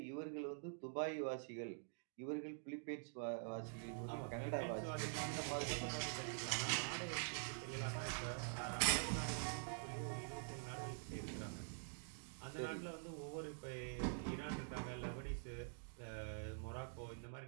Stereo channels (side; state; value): left; silent; digital silence